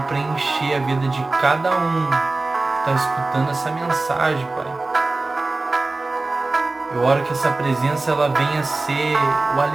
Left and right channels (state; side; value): quieter; left; 3.3 dB